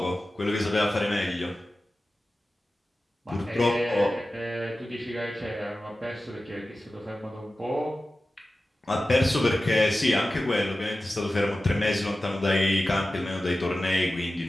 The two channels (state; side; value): normal; both; correlation 0.95